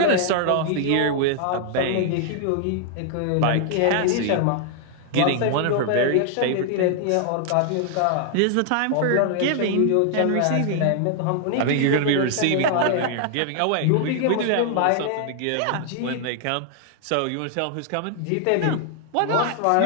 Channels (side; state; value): both; different; correlation 0.00